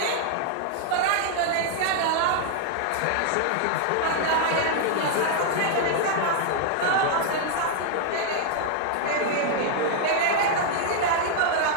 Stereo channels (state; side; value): different; both; correlation -0.01